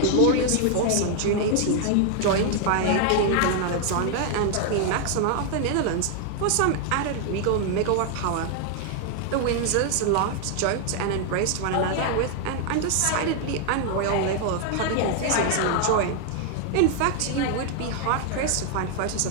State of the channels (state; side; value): different; both; correlation 0.00